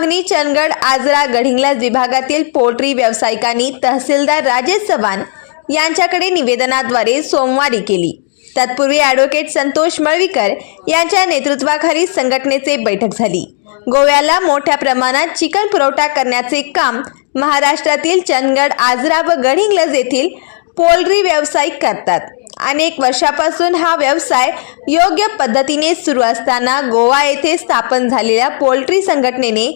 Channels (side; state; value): right; silent; digital silence